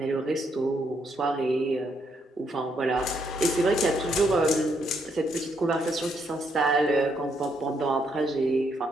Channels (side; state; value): both; normal; correlation 0.75